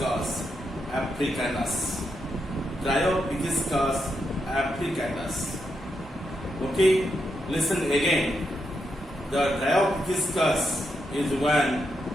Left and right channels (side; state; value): both; normal; correlation 0.83